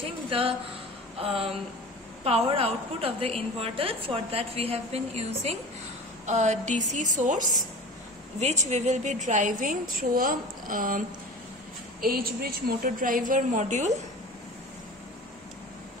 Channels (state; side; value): normal; both; correlation 0.37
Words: the power output of the inverter. For that, we have been using a DC source, which we will be driving through a H-bridge motor driver module,